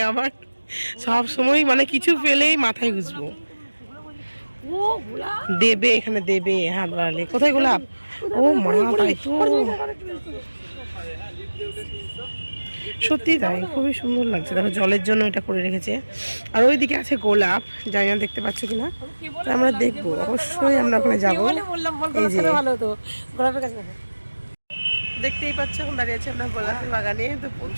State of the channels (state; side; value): inverted; both; correlation -1.00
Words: আবার সব সময় মানে কিছু পেলেই মাথায় গুজবো। দেবে, এখানে দেবে হাত বাড়ালে। কোথায় গোলাপ? ও মা, তাই তো, সত্যি তাই, খুবই সুন্দর লাগছে। দেখো জলের জন্য এটা করে রেখেছে। আর ওইদিকে আছে গোলাপ, জানি না দেখতে পাচ্ছ কিনা, আমরা দেখবো অবশ্যই, আমরা ওখানে যাবো। দেখতেই পাচ্ছ এখন দাঁড়িয়ে আছে আমরা গোলাপের বাগানে। তো